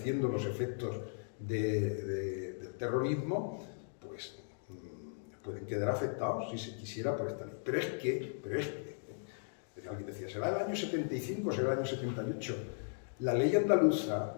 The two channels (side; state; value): right; silent; digital silence